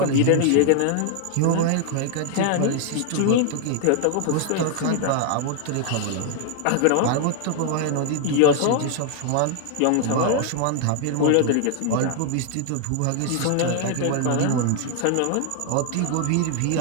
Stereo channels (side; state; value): both; different; correlation 0.00